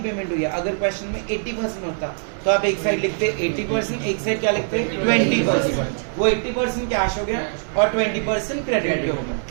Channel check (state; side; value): silent; left; digital silence